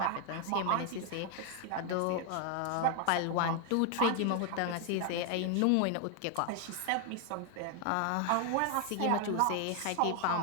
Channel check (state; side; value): different; both; correlation 0.00